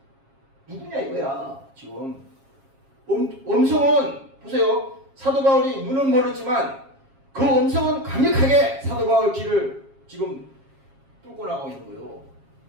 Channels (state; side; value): late; left; 7.4 ms